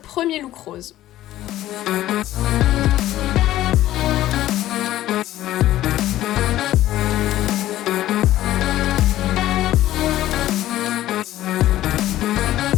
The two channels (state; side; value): quieter; right; 14.2 dB